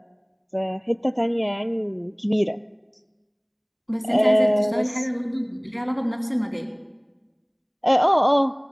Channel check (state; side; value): identical; both; correlation 1.00